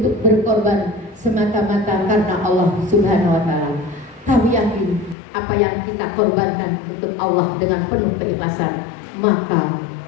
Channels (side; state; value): right; drops out; at 5.2 s